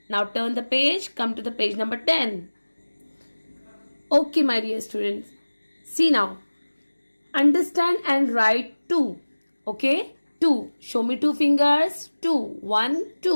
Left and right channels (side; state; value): both; inverted; correlation -1.00